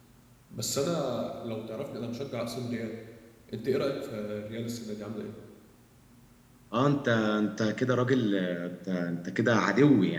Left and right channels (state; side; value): identical; both; correlation 1.00